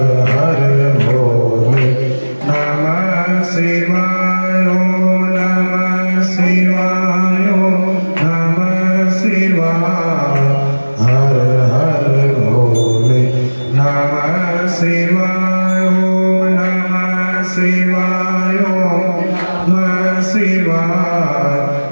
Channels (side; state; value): both; inverted; correlation -1.00